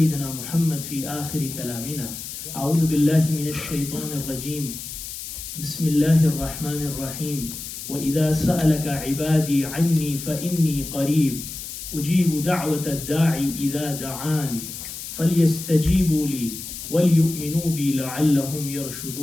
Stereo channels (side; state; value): left; noise; hiss, 9 dB below the sound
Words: محمد في آخر كلامنا. أعوذ بالله من الشيطان الرجيم. بسم الله الرحمن الرحيم. وإذا سألك عبادي عني فإني قريب أجيب دعوة الداعي إذا دعاني فليستجيبوا لي وليؤمنوا بي لعلهم